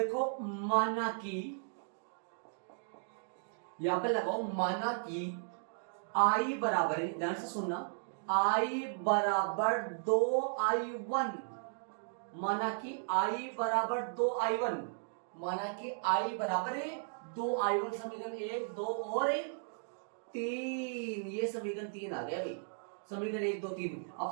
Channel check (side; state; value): left; silent; digital silence